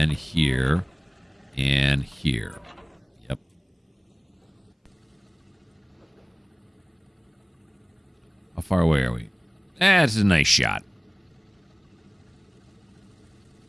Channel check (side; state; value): both; identical; correlation 1.00